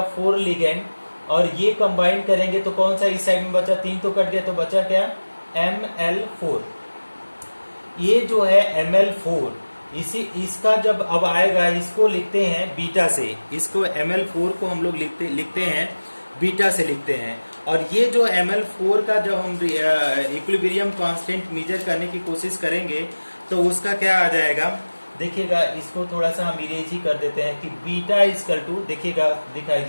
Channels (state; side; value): inverted; both; correlation -1.00